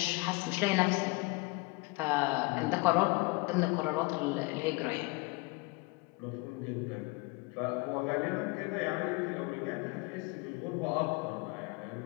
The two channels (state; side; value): quieter; right; 26.6 dB